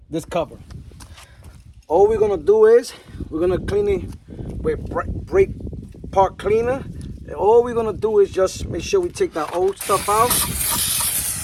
this cover. All we're gonna do is we're gonna clean it with brake part cleaner. And all we're gonna do is just make sure we take that old stuff out.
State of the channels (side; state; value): both; identical; correlation 1.00